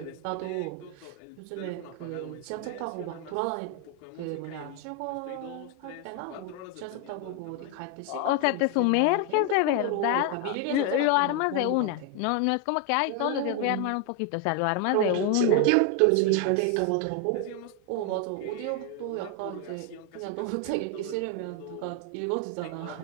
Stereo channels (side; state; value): both; different; correlation 0.01